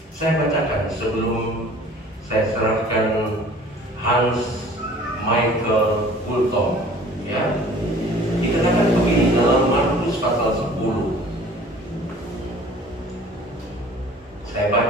Saya bacakan sebelum saya serahkan Hans Michael Fulton ya. Dikatakan begini dalam Markus pasal 10. Saya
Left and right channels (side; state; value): both; normal; correlation 0.49